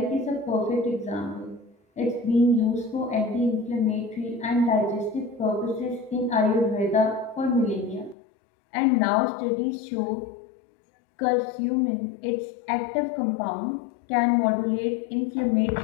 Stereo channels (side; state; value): right; drops out; at 8.2 s